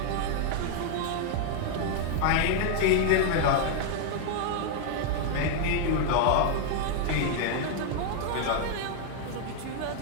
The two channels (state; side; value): different; both; correlation 0.00